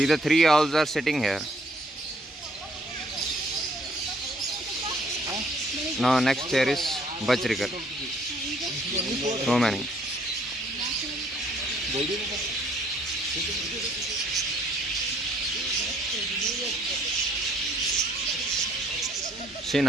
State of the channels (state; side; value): normal; both; correlation 0.63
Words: the three owls are sitting here. Now next here is Bajrigar. So many. See,